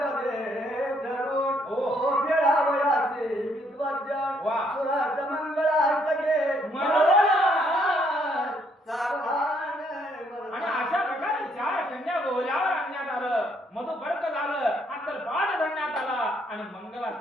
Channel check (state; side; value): normal; both; correlation 0.69